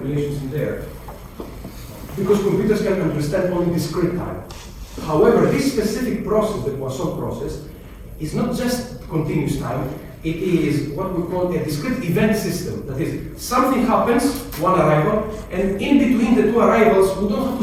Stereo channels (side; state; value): both; identical; correlation 1.00